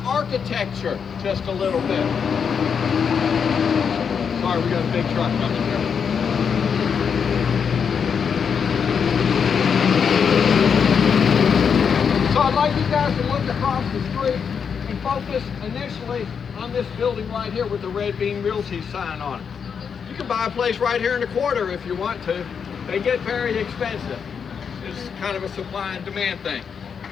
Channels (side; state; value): right; quieter; 6.7 dB